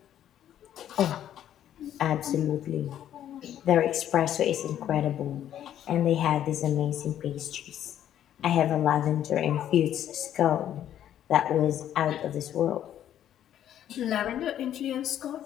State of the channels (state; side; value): quieter; right; 10.9 dB